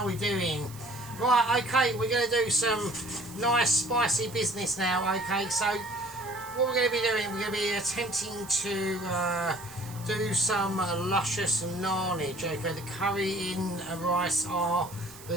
are we doing? Right, okay, we're going to do some nice spicy business now, okay, so what we're going to be doing, we're going to be attempting to do some luscious nannage, okay, the curry in rice are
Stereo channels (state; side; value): noise; right; hiss, 18 dB below the sound